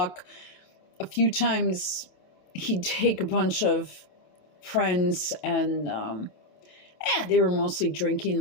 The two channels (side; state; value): right; late; 27 ms